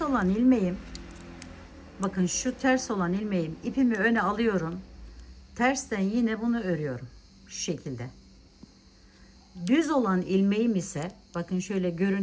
olan ilmeğim, bakın şu ters olan ilmeğim, ipimi öne alıyorum. Tersten yine bunu örüyorum. Şu şekilde. Düz olan ilmeğim ise bakın şöyle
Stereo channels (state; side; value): identical; both; correlation 1.00